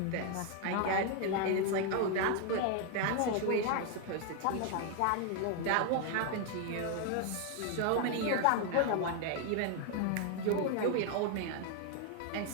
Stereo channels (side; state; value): both; different; correlation 0.00